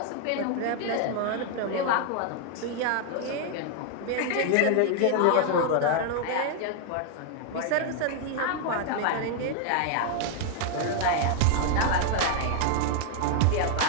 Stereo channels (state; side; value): different; both; correlation 0.00